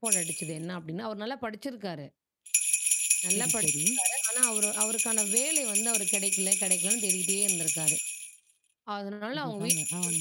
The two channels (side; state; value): both; identical; correlation 1.00